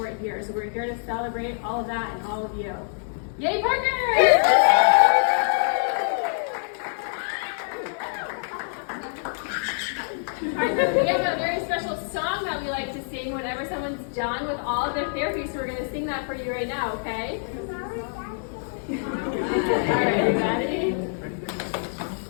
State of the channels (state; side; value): silent; right; 59 dB below the other